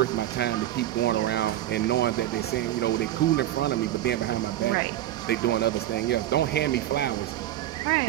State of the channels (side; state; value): left; quieter; 13.3 dB